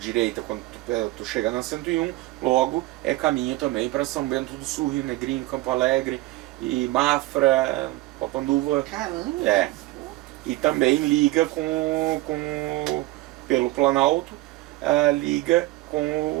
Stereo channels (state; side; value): quieter; left; 18.8 dB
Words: quando tu chega na 101, logo é caminho também para São Bento do Sul, Rio Negrinho, Campo Alegre, e Mafra, Papanduva. Caramba! É. E também liga pelo Planalto, liga